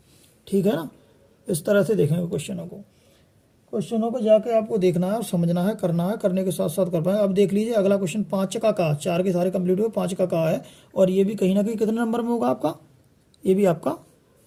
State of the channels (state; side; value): identical; both; correlation 1.00